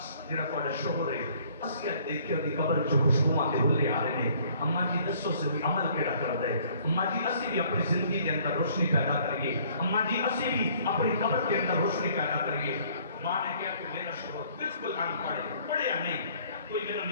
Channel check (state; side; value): inverted; both; correlation -0.59